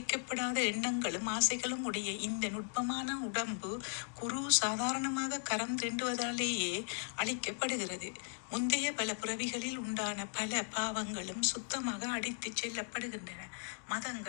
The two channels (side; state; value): right; silent; 53 dB below the other